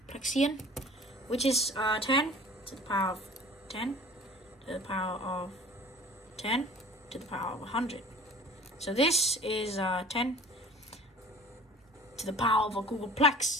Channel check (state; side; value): normal; both; correlation 0.45